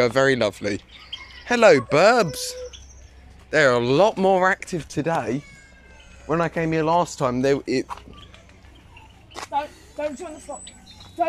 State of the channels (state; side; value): identical; both; correlation 1.00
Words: very lovely. Hello, burbs. They're a lot more active today. When I came here last time, Don't join the flock.